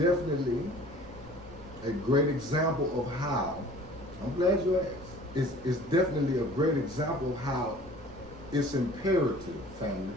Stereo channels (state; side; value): noise; right; rumble, 19 dB below the sound